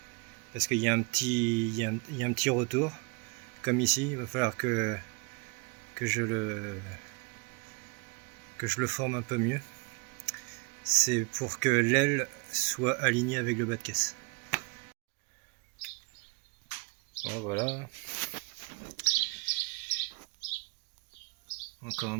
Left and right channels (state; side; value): quieter; left; 32.8 dB